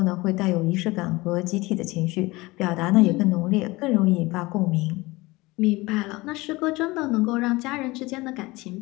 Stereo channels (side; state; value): right; quieter; 21.7 dB